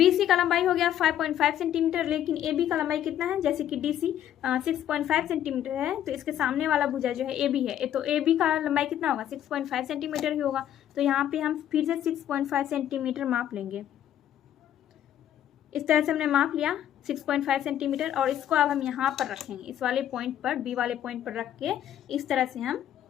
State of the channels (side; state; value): right; quieter; 11.0 dB